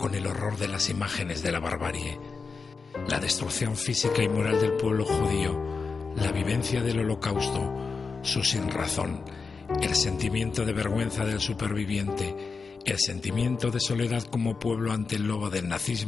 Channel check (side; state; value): right; quieter; 4.8 dB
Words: el horror de las imágenes de la barbarie, la destrucción física y moral del pueblo judío, la vivencia del Holocausto, su sinrazón, el sentimiento de vergüenza del superviviente, el sentimiento de soledad como pueblo ante el lobo del